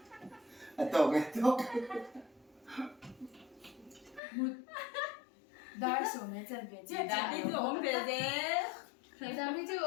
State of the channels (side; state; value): right; drops out; at 4.2 s